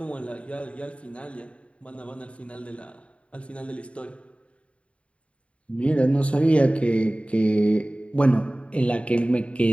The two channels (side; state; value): right; late; 0.061 ms